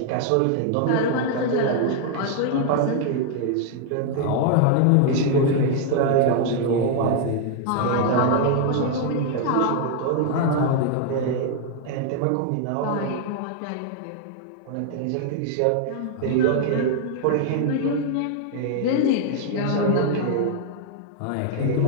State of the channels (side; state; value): both; different; correlation 0.00